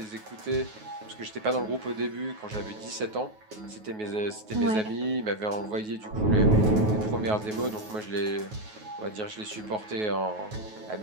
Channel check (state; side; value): late; left; 9.4 ms